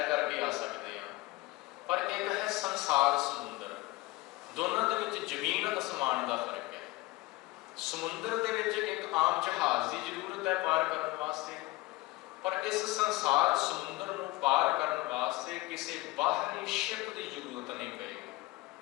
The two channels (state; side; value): quieter; right; 20.6 dB